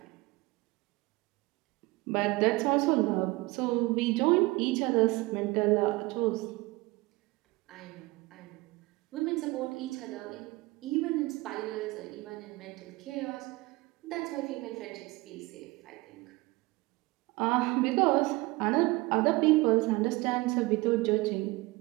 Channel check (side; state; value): left; quieter; 22.0 dB